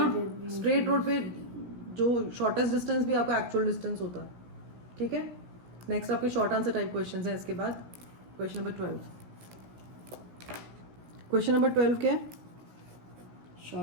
स्ट्रेट रोड पे जो शॉर्टेस्ट डिस्टेंस भी आपका एक्चुअल डिस्टेंस होता है। ठीक है, नेक्स्ट आपके शॉर्ट आंसर टाइप क्वेश्चंस हैं। इसके बाद क्वेश्चन नंबर 12। क्वेश्चन नंबर 12 क्या है,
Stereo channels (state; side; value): late; left; 17 ms